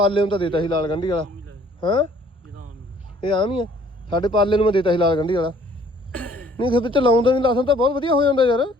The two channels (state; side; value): normal; both; correlation 0.58